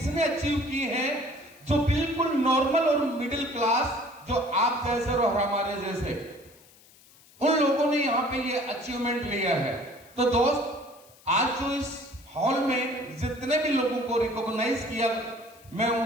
अचीव की है, जो बिल्कुल नॉर्मल और मिडिल क्लास, जो आप जैसे और हमारे जैसे, उन लोगों ने यहाँ पे ये अचीवमेंट लिया है। तो दोस्त, आज जो इस हॉल में जितने भी लोगों को रिकॉग्नाइज किया, मैं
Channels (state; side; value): noise; left; hiss, 26 dB below the sound